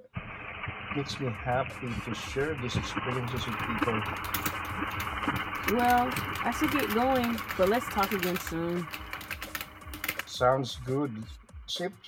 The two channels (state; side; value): identical; both; correlation 1.00